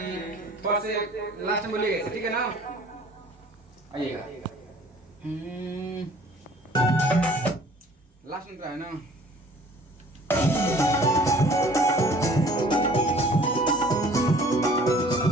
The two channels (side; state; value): both; normal; correlation 0.52